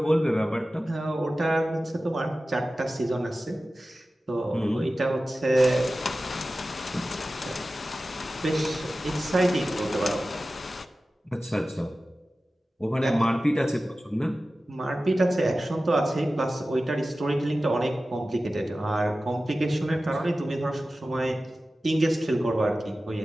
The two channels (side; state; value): both; normal; correlation 0.95